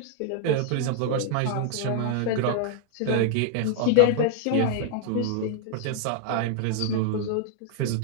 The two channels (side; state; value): both; different; correlation 0.00